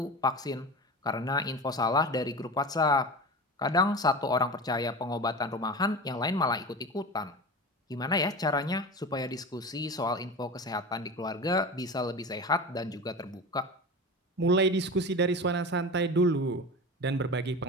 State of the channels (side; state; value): both; normal; correlation 0.29